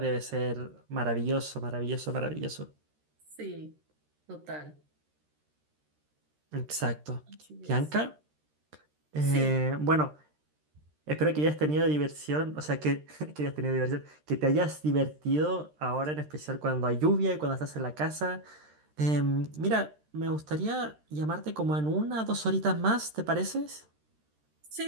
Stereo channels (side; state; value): left; late; 13 ms